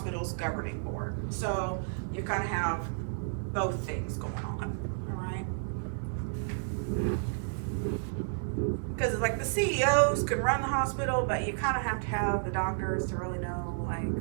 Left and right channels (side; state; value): left; silent; digital silence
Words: governing board. So you kind of have both things going on, all right? Because like the CEOs could run the hospital, but you kind of have to have the doctors to really know like